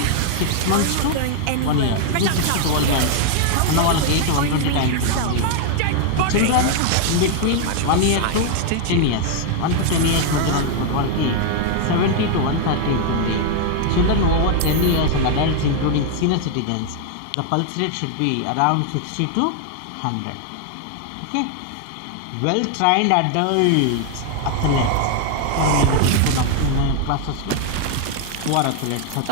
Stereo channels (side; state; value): both; different; correlation 0.00